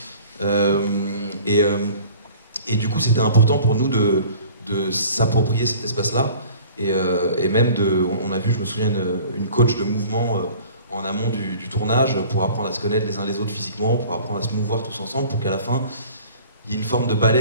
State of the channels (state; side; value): inverted; both; correlation -0.47